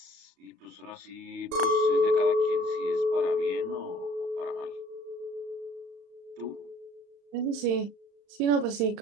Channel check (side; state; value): left; late; 35 ms